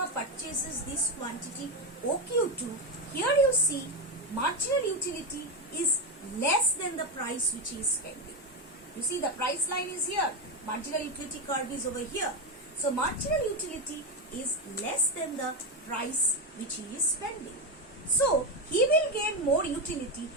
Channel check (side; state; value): both; normal; correlation 0.11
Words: purchases this quantity OQ2, here you see marginal utility is less than the price which he is spending. You see the price line is here. Marginal utility curve is over here. So marginal utility is less than the price which he is spending. So he will gain more utility